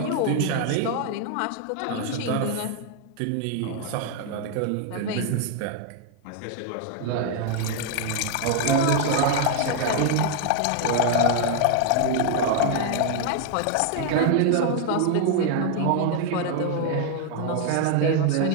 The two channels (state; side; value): different; both; correlation 0.00